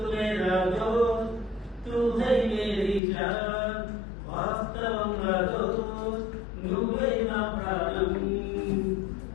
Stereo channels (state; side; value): drops out; right; at 3.0 s